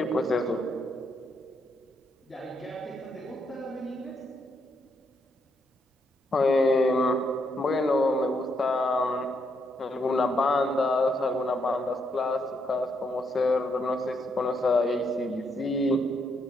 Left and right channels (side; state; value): both; normal; correlation 0.77